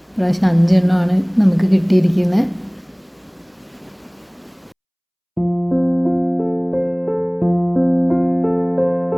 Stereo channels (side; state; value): both; identical; correlation 1.00